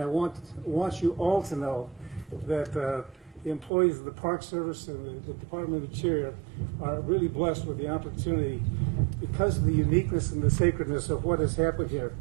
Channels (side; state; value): left; drops out; at 3.7 s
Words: want you all to know that the employees of the Park Service and the Department of Interior are really blessed with the opportunity because of the uniqueness and the sacredness of what has happened here.